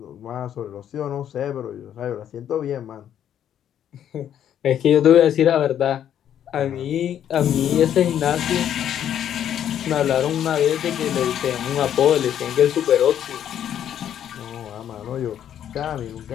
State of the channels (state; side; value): quieter; right; 10.0 dB